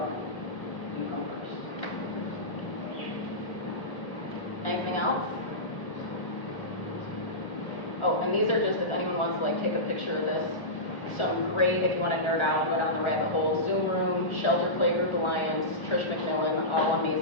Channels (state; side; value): late; right; 1.3 ms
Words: you come first. Anything else? Oh, and these are just, if anyone wants to like take a picture of this, some great, if you want to nerd out and go down the rabbit hole, Zoom Room, Shelter Playgroup Alliance, Trish McMillan, all